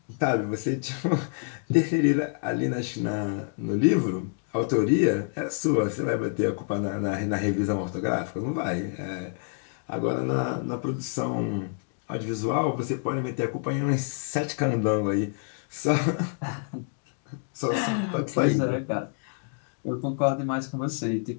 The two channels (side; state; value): right; silent; 60 dB below the other